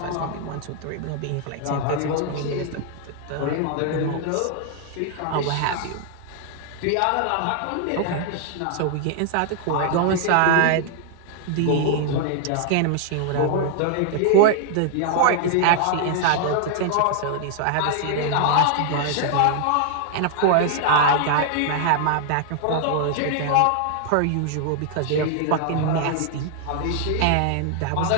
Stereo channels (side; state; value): both; different; correlation 0.00